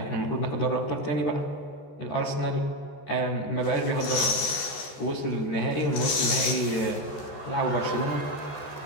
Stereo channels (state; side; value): late; right; 14 ms